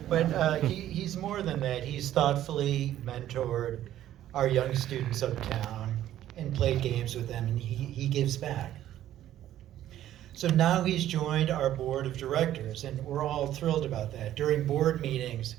But he's more than that. He's thoughtfully mentored our young students uptown and played games with them, and he gives back. So now he's joined our board of directors, and we're all thrilled about that. During board meetings,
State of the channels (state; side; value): quieter; left; 12.5 dB